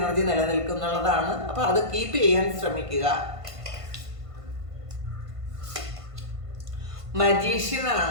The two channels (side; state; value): left; late; 1.5 ms